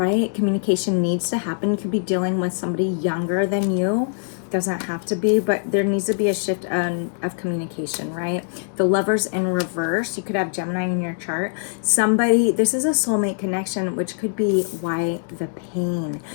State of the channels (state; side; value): silent; right; digital silence